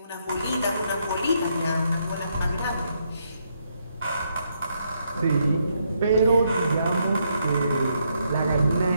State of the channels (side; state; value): both; inverted; correlation -0.76